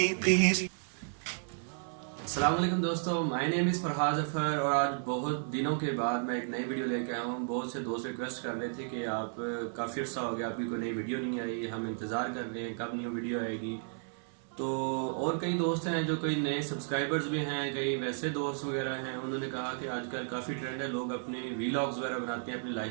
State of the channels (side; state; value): left; silent; digital silence